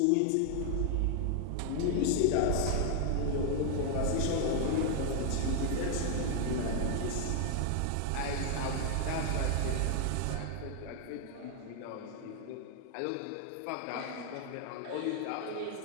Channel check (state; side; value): different; both; correlation 0.00